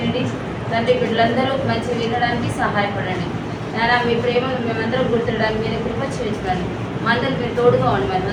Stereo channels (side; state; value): both; identical; correlation 1.00